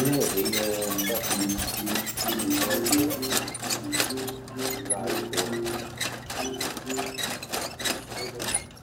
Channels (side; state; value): both; identical; correlation 1.00